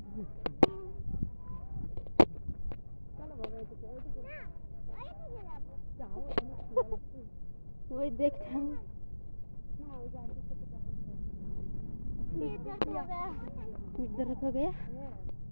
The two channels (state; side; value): inverted; both; correlation -1.00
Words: চলো বাবা এদিকে ওইদিকে যাও, ওই দেখতাম না, ওই যে আন্টির সাথে দেখা इधर हो गया।